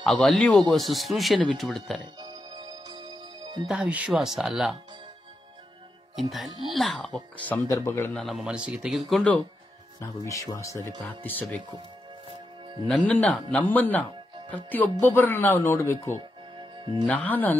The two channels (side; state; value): both; normal; correlation 0.86